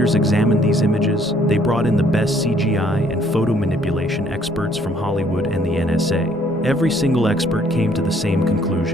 examined these images, they brought in the best CGI and photo manipulation experts from Hollywood and the NSA. Every single expert came to the same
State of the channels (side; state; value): both; normal; correlation 0.63